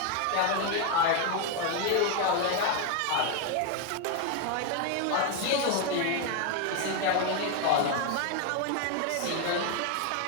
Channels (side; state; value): both; different; correlation 0.01